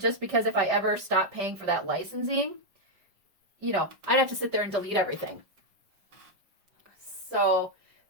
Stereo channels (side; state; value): left; late; 5.2 ms